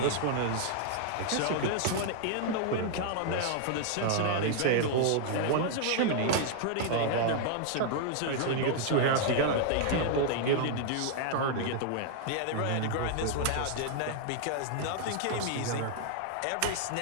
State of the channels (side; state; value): both; different; correlation -0.01